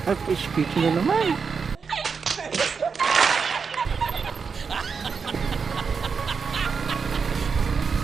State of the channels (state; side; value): quieter; left; 5.6 dB